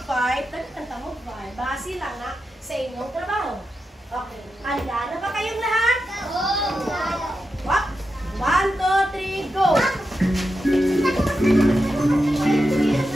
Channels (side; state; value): both; normal; correlation 0.89